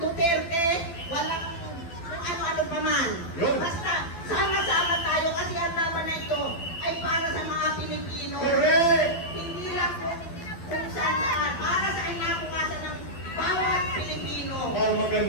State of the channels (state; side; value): late; right; 12 ms